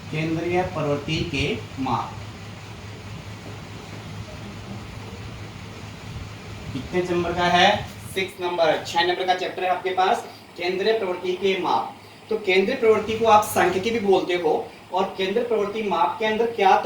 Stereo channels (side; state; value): both; identical; correlation 1.00